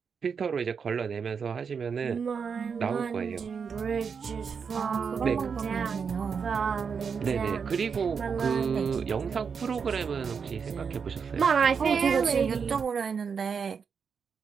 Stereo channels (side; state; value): left; quieter; 6.1 dB